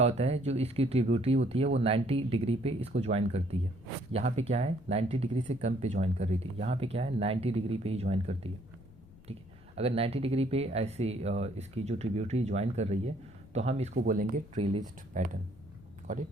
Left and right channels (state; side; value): noise; left; rumble, 23 dB below the sound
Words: होता है, जो इसकी ट्रिब्यूटरी होती है वो 90 डिग्री पे इसको ज्वाइन करती है। यहाँ पे क्या है, 90 डिग्री से कम पे ज्वाइन कर रही थी, यहाँ पे क्या है 90 डिग्री पे ही ज्वाइन करती है, ठीक है। अगर 90 डिग्री पे ऐसे इसकी जो ट्रिब्यूटरी ज्वाइन कर रही है तो हम इसको बोलेंगे ट्रेलिस्ट पैटर्न, गॉट इट।